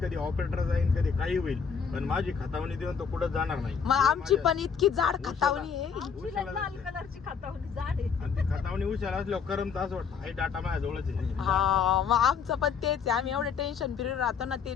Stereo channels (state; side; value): quieter; right; 6.4 dB